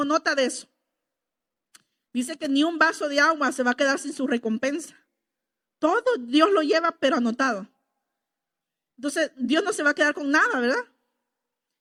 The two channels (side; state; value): both; identical; correlation 1.00